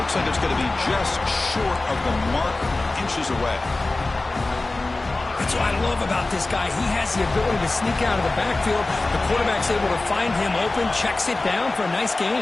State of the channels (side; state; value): right; quieter; 3.1 dB